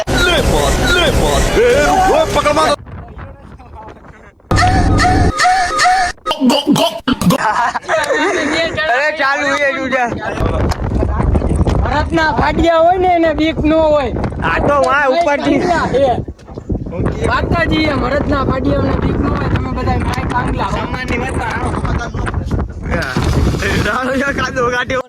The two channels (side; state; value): both; identical; correlation 1.00